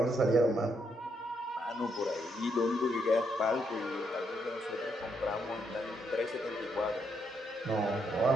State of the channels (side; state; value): both; normal; correlation 0.77